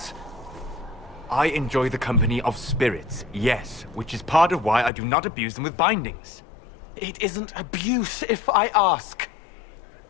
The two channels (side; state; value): right; drops out; at 4.9 s